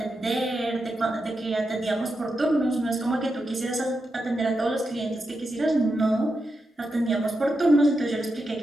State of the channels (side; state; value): both; normal; correlation 0.87